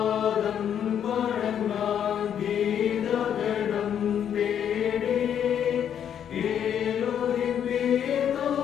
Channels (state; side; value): quieter; right; 9.1 dB